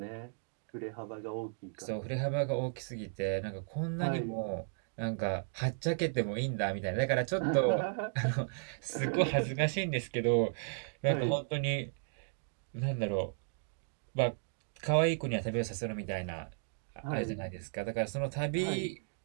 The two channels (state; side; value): silent; left; digital silence